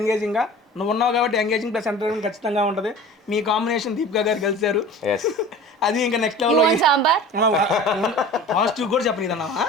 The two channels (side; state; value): both; normal; correlation 0.40